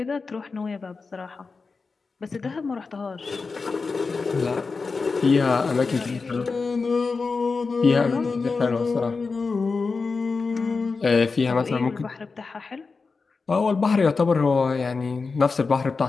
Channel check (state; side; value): quieter; right; 4.4 dB